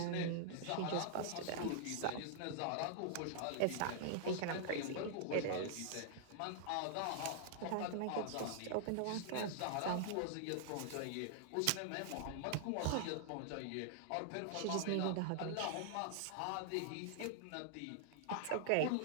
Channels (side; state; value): both; different; correlation -0.01